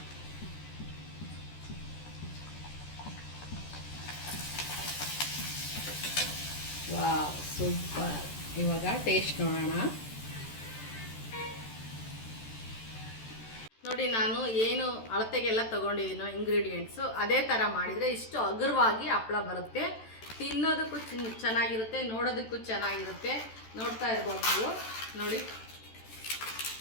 Wow, super. ಇವಾಗ ಟೇಸ್ಟ್ ನೋಡೋಣ. ನೋಡಿ, ನಾನು ಏನು ಅಳತೆಗೆಲ್ಲ ತೊಗೊಂಡಿದ್ದೀನೋ ಇಂಗ್ರೀಡಿಯೆಂಟ್ಸು ಅದೇ ಥರ ಮಾಡಿದರೆ ಇಷ್ಟು ಹಗುರವಾಗಿ ಹಪ್ಪಳ ಬರುತ್ತೆ. ತಿನ್ನೋದಕ್ಕೂ ಚೆನ್ನಾಗಿರುತ್ತೆ, ನೋಡೋದಕ್ಕೂ ಚೆನ್ನಾಗಿರುತ್ತೆ. ನೋಡ್ತಾ ಇರ್ಬೋದು ನೀವು ನೋಡಿ.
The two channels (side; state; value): right; late; 13 ms